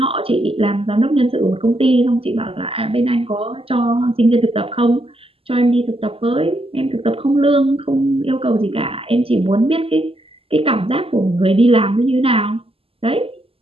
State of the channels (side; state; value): left; late; 0.28 ms